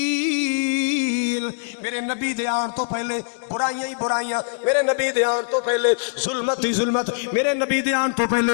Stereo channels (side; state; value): right; silent; digital silence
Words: میرے نبی دے آن تو پہلے برائیاں ہی برائیاں، میرے نبی دے آن تو پہلے ظلمت ہی ظلمت، میرے نبی دے آن تو پہلے